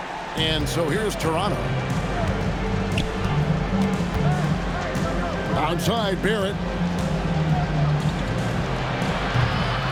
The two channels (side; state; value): both; identical; correlation 1.00